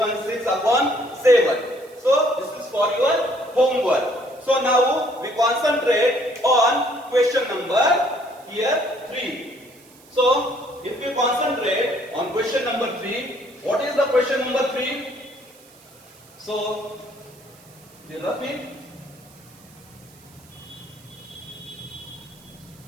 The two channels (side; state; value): right; noise; hiss, 26 dB below the sound